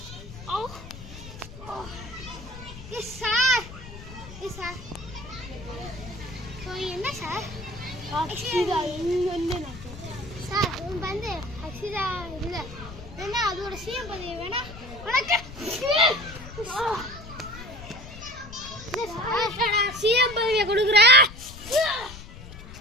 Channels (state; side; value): noise; left; rumble, 14 dB below the sound